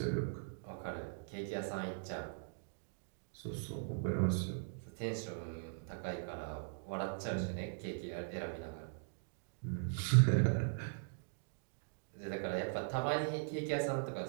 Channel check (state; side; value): silent; left; digital silence